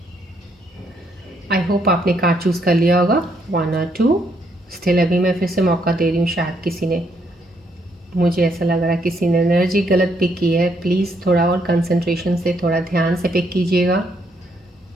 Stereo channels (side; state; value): both; normal; correlation 0.73